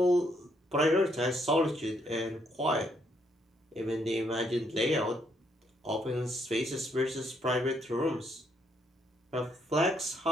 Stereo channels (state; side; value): normal; both; correlation 0.73